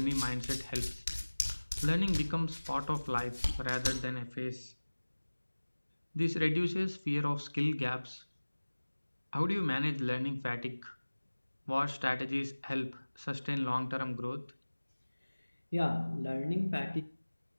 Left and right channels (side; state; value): both; inverted; correlation -1.00